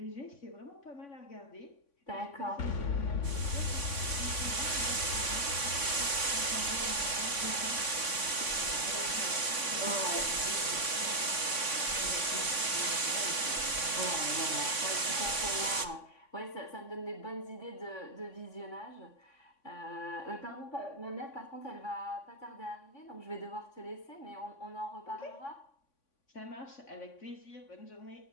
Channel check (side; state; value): right; late; 3.5 ms